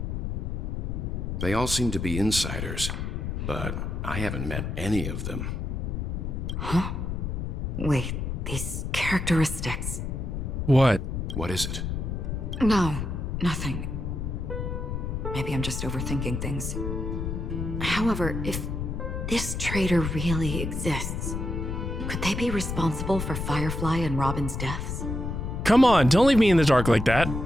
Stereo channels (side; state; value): left; noise; rumble, 3 dB below the sound